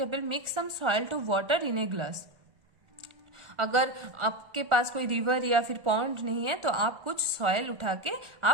mix some soil to water in a glass. अगर आपके पास कोई रिवर या फिर पॉन्ड नहीं है तो आप कुछ सॉइल उठा के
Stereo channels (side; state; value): left; late; 1.3 ms